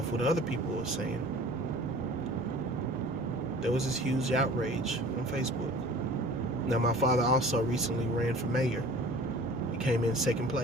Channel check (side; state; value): both; normal; correlation 0.45